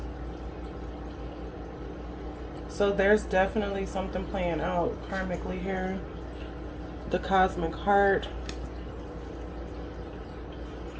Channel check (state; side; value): identical; both; correlation 1.00